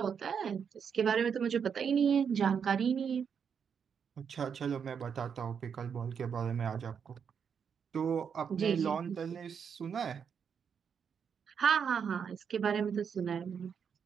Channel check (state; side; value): quieter; left; 7.0 dB